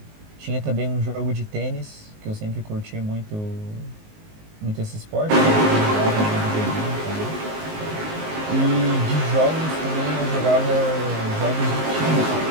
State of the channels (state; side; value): late; left; 19 ms